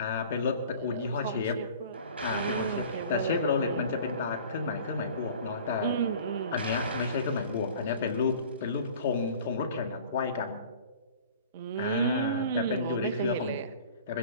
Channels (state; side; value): inverted; both; correlation -0.44